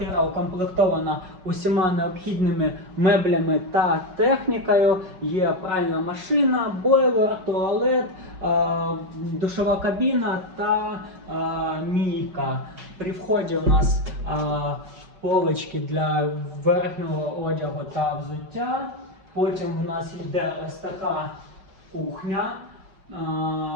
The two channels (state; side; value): late; left; 5.4 ms